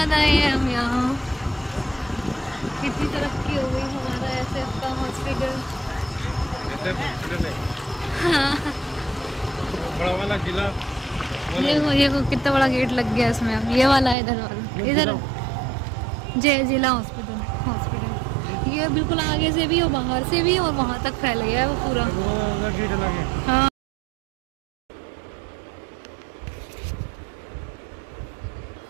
आए हैं हम यहाँ, कितनी तरक्की हो गई हमारा एसएफ का हॉस्पिटल। हाँ। बड़ा वाला जिला, ये कितना बड़ा गेट लग गया इसमें। अब ये वाला है, इधर वाला, इधर जय जिला हॉस्पिटल ये बिल्कुल आगे से भी और बाहर से भी, और वहाँ तक फैल गया है वो पूरा। हाँ।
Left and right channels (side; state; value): left; drops out; at 14.2 s